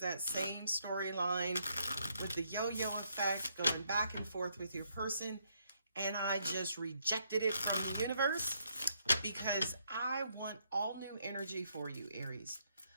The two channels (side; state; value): both; inverted; correlation -0.73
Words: same storyline with the yo-yo effect going back and forth with your person, and I just rejected it from the universe because I want all new energy for you, Aries.